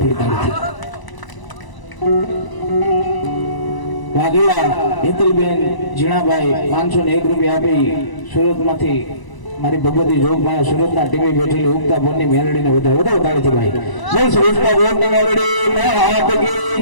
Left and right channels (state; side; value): late; right; 1.0 ms